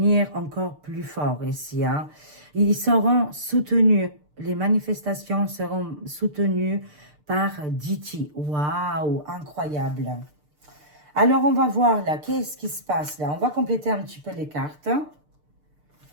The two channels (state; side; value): late; left; 6.7 ms